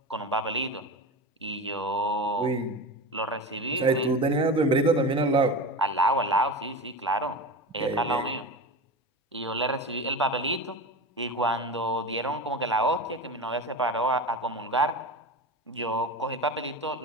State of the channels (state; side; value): normal; both; correlation 0.27